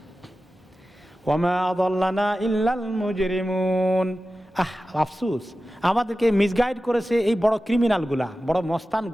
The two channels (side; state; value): both; normal; correlation 0.94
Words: ওয়ামা আযাল্লানা ইল্লাল মুজরিমুন, আফসোস, আমাদেরকে মিসগাইড করেছে এই বড় ক্রিমিনালগুলা, বড়